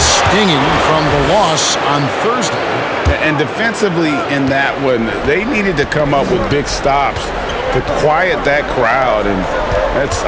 from the loss on Thursday. And defensively in that one, they needed to come up with big stops to quiet that crowd, and that's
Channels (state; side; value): identical; both; correlation 1.00